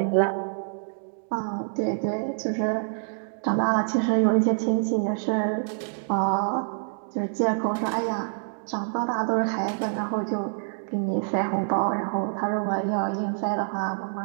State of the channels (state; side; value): silent; left; digital silence